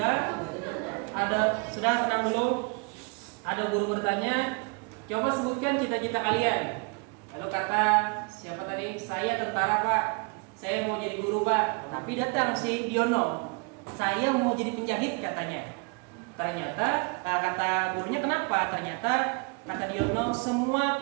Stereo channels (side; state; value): left; quieter; 33.7 dB